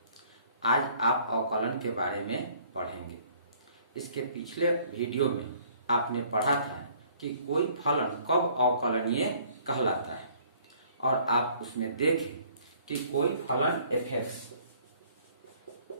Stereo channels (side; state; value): both; inverted; correlation -0.58